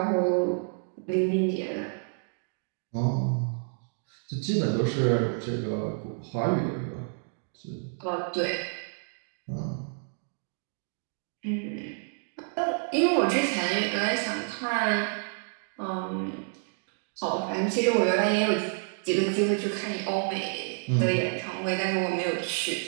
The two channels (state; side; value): silent; left; 58 dB below the other